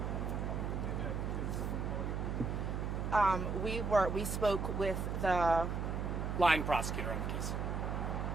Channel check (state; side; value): noise; right; hum, 1 dB below the sound